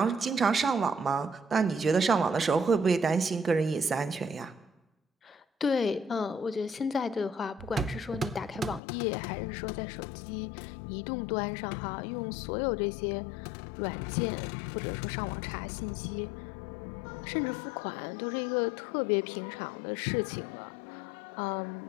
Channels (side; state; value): right; drops out; at 8.8 s